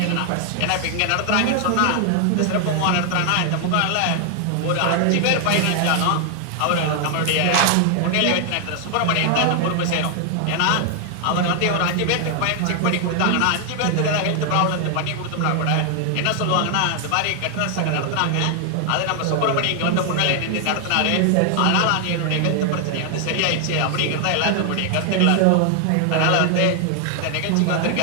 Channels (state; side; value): different; both; correlation 0.00